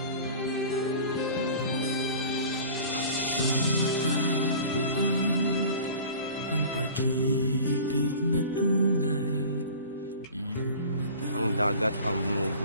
Ang pag-ibig na tunay. Ang dagat ang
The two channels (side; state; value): both; inverted; correlation -0.42